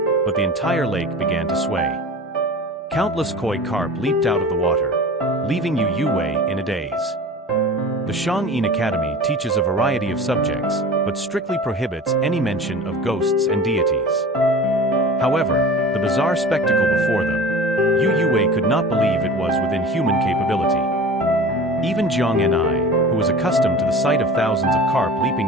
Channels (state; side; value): normal; both; correlation 0.38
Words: but the entire lake began to sway. Countless koi carp leaped out of the water, leaving Yu Yue in a daze. The Shuangwen Academy teaches a variety of subjects, but strictly prohibits any mention of ghosts and deities. However, the bizarre spectacle before them, Yu Yue could not believe it was within human capability. Even Jiang and I, who was accustomed to the sight of thousands of carp